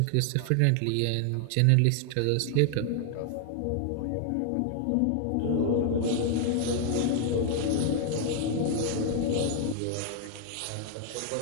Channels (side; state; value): both; different; correlation 0.00